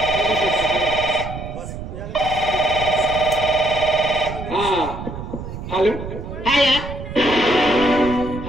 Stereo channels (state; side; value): noise; right; rumble, 9 dB below the sound